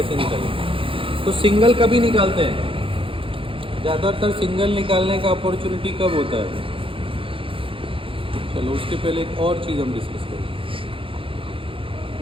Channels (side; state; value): left; late; 0.26 ms